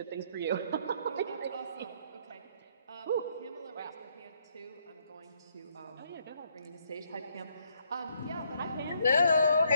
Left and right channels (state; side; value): inverted; both; correlation -0.71